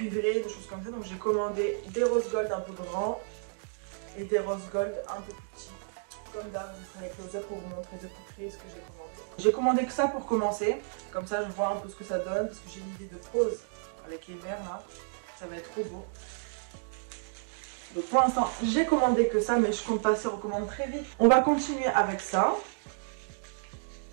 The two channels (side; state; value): left; silent; digital silence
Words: des choses comme ça. Donc j'ai commandé des rose gold un peu grands et des rose gold un peu plus petits. Comme d'hab, je ferai close up pour vous montrer de plus près ce que j'ai commandé. J'ai commandé que ça pour commencer. Comme ça je vois un peu ce que ça donne parce que j'ai une idée de pose avec les verres là. Ça va être trop beau. Donc pour l'instant j'ai commandé que ça mais je compte passer aux commandes très vite. On va continuer avec ça.